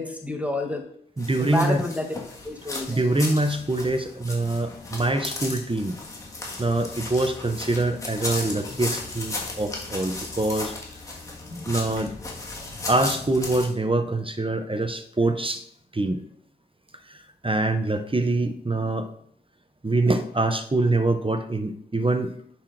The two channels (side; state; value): both; normal; correlation 0.70